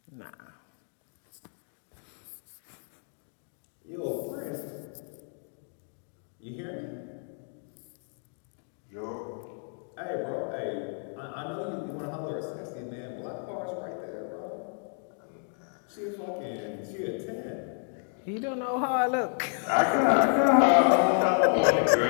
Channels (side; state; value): right; silent; 57 dB below the other